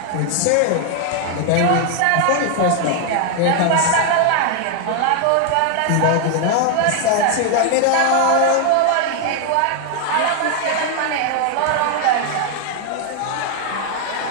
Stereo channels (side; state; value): both; different; correlation 0.00